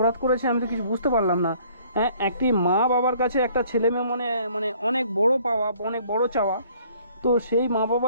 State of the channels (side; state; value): both; inverted; correlation -0.59